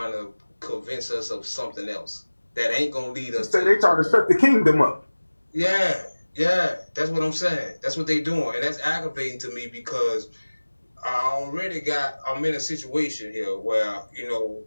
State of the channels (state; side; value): inverted; both; correlation -1.00